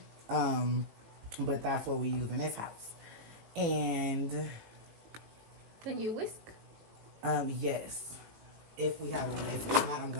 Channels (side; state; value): left; late; 18 ms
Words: but that's what we use in this house. And then you whisk. Yes, if we have a whisk. If not, I'm